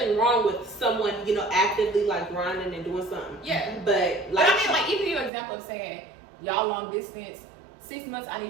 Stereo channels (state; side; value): drops out; left; at 5.3 s